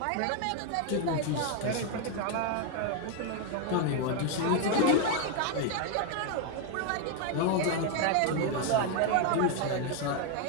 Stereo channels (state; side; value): different; both; correlation 0.01